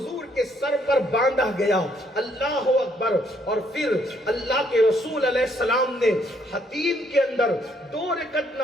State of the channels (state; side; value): normal; both; correlation 0.69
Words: کے سر پر باندھا گیا، اللہ اکبر۔ اور پھر اللہ کے رسول علیہ السلام نے حتیم کے اندر 2 رکعت